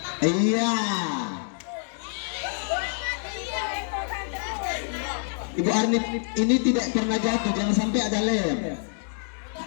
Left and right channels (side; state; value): right; silent; digital silence